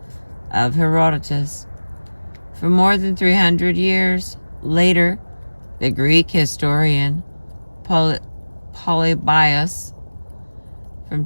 of Herodotus. For more than 300 years later, the Greek historian Polybius from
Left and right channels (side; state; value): both; inverted; correlation -1.00